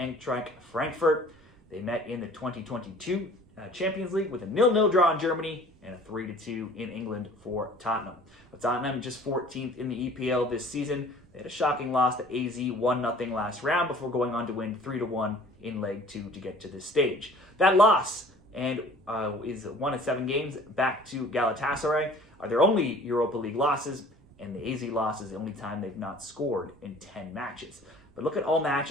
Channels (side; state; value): right; noise; rumble, 28 dB below the sound